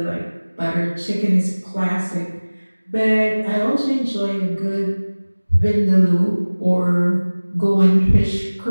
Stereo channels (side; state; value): both; inverted; correlation -1.00